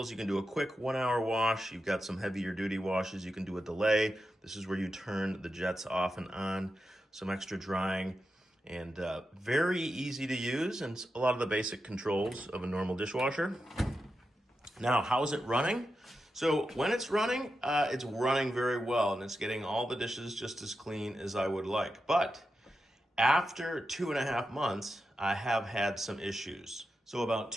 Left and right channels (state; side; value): normal; both; correlation 0.89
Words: You can do a quick 1-hour wash. You've got some heavier duty washes. You can do a delay. This is where you turn the jets off and on. Some extra drying, and very easy to use, and a lot of the basic controls of a normal dishwasher. Now, how is it running? So when it's running very well, and it's getting all the dishes just as clean as I would like. But after 2.5 months, I have had some issues. So about